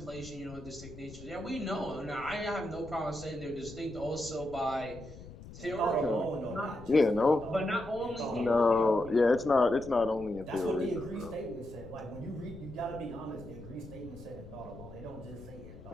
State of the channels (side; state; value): left; noise; rumble, 16 dB below the sound